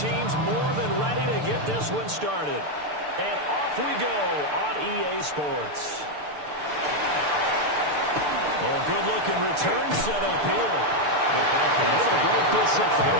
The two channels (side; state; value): left; late; 6.8 ms